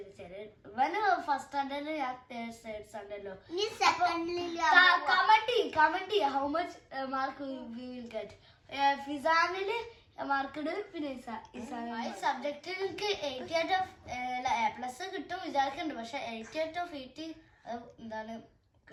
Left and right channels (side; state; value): both; identical; correlation 1.00